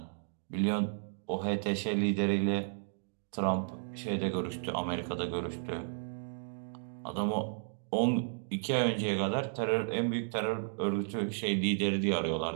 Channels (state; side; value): silent; left; digital silence